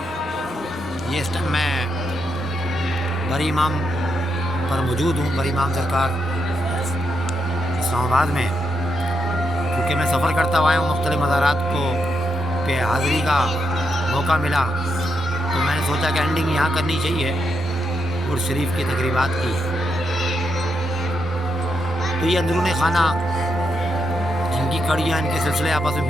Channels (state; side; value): normal; both; correlation 0.82